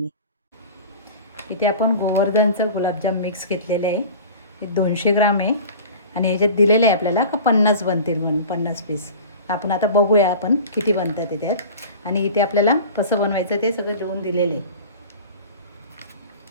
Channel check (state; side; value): inverted; both; correlation -0.38